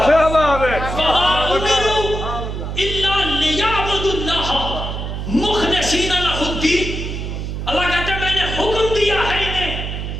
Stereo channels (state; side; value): noise; right; hum, 5 dB below the sound